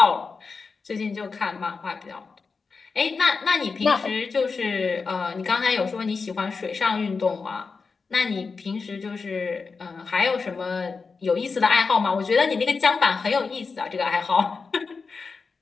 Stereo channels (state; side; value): quieter; right; 4.7 dB